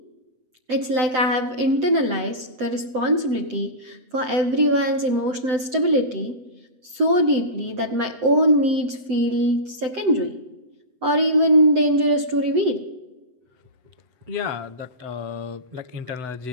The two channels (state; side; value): late; left; 7.8 ms